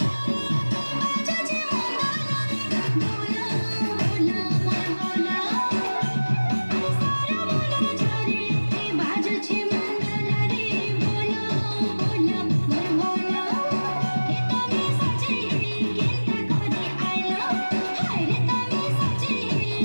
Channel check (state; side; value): inverted; both; correlation -1.00